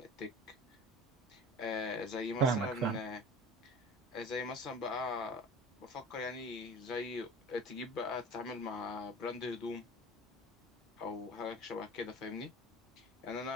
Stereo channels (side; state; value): both; normal; correlation 0.39